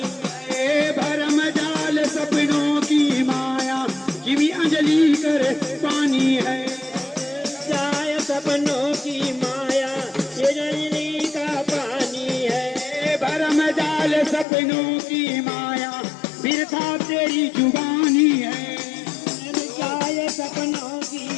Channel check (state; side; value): drops out; right; at 14.5 s